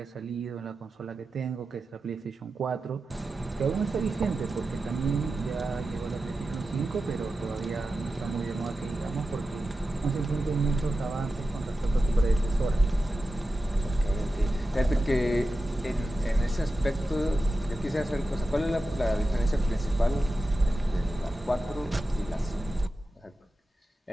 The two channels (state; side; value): normal; both; correlation 0.92